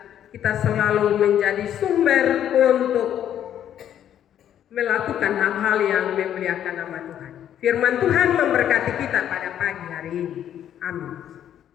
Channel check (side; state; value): right; quieter; 10.3 dB